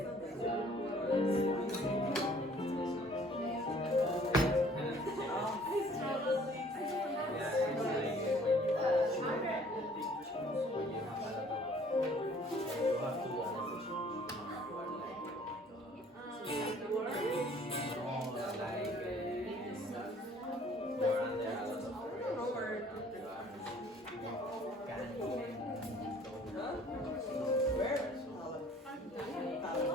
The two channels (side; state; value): both; normal; correlation 0.55